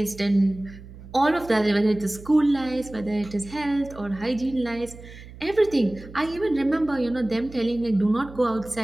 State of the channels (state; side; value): noise; right; hum, 17 dB below the sound